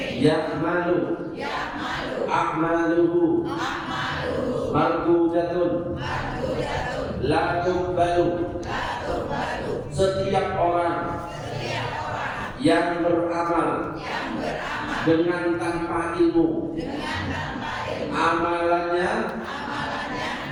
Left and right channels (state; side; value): identical; both; correlation 1.00